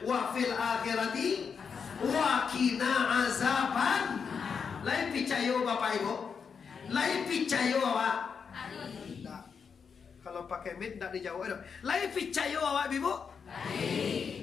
wa fil akhirati wa qina azaban. Lain picayo Bapak Ibu, lain picayo awak. Kalau pakai mid tidak dijawab dong. Lain picayo awak Ibu?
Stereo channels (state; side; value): quieter; right; 6.2 dB